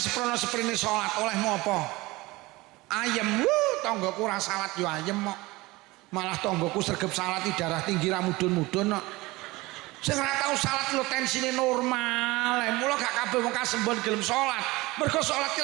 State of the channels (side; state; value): left; quieter; 21.1 dB